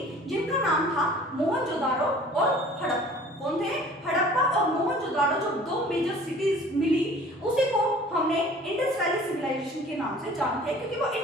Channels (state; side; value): normal; both; correlation 0.48